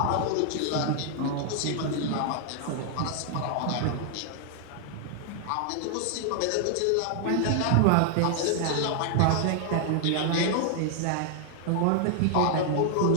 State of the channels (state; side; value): different; both; correlation 0.00